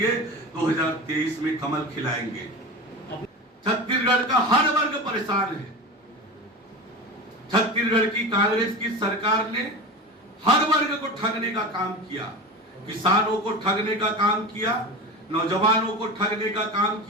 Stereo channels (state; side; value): normal; both; correlation 0.28